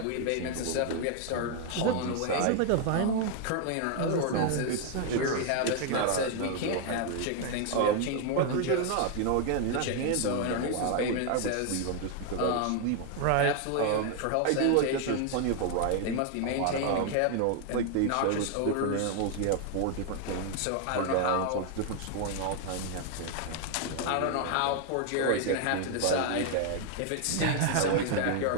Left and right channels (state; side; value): different; both; correlation 0.00